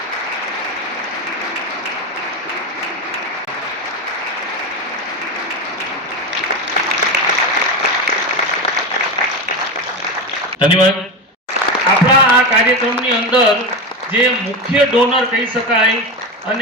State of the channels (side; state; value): both; normal; correlation 0.18